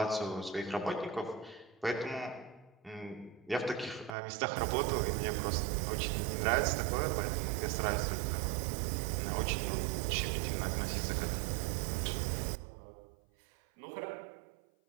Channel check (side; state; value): left; drops out; at 4.2 s